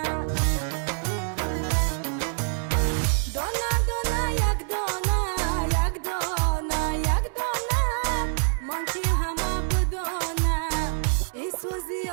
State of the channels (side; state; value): left; silent; 61 dB below the other